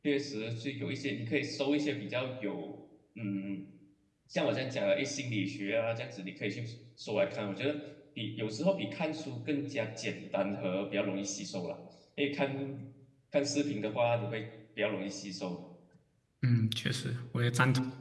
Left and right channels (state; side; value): identical; both; correlation 1.00